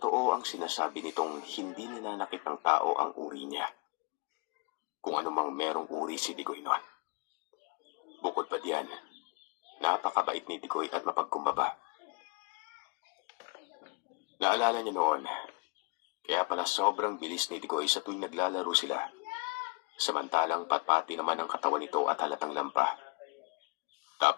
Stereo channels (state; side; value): quieter; right; 30.0 dB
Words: ang sinasabi nitong hindi nananakit ng tao ang uri niya, kung anumang merong uri si Tigoy noon. Bukod pa diyan, napakabait ni Tigoy at mapagkumbaba. Naalala niya noon, kaya pala sobrang bilis ni Tigoy sa tuwing naglalaro sila, samantalang patpati naman ang katawan nito at halatang lampa.